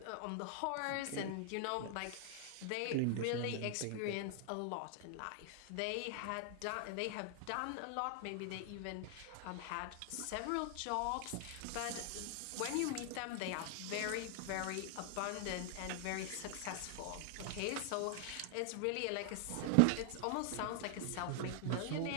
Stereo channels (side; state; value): both; different; correlation 0.00